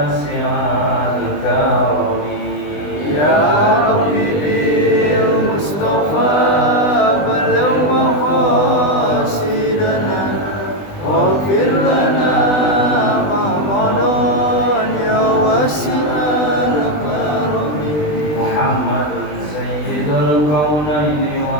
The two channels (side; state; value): right; late; 20 ms